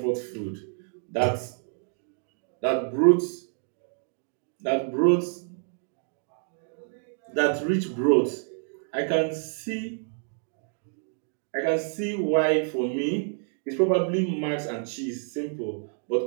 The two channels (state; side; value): silent; left; 59 dB below the other